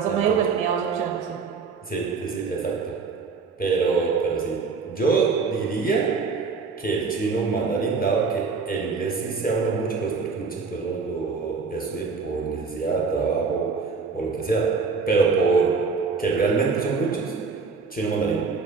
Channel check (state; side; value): quieter; left; 4.8 dB